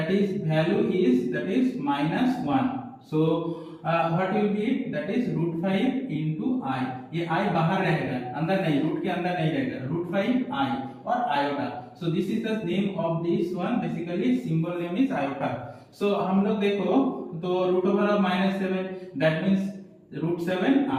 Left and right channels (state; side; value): identical; both; correlation 1.00